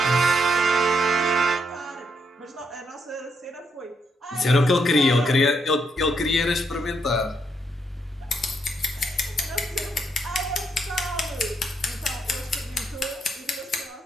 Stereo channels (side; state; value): both; normal; correlation 0.77